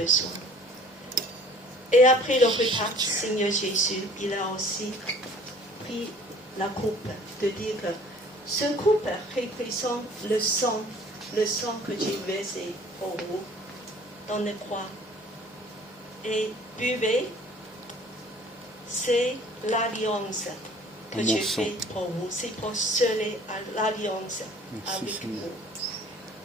Et après le repas, Seigneur Jésus, il a aussi pris la coupe, de dire que ce coupe représente le sang que j'ai versé pour vous dans la croix. Et buvez, c'est l'alliance que Mon j'ai sang. faite pour vous. C'est pour sceller l'alliance Merci, avec Seigneur.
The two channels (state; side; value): normal; both; correlation 0.52